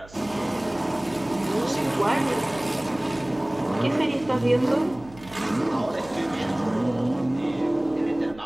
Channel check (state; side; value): noise; right; hum, 21 dB below the sound